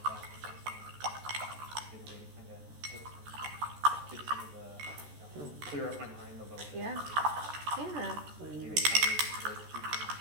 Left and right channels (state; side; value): late; left; 14 ms